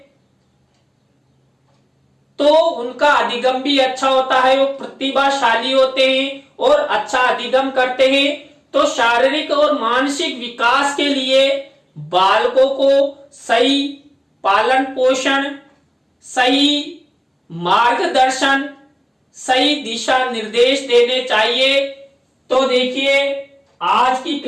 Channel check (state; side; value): identical; both; correlation 1.00